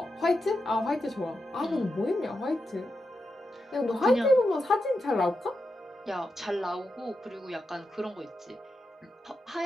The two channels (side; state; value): both; normal; correlation 0.88